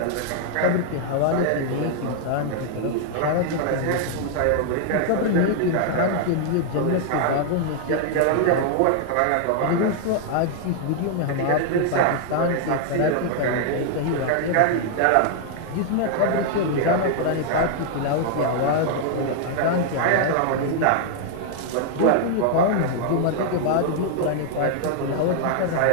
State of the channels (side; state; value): both; different; correlation 0.00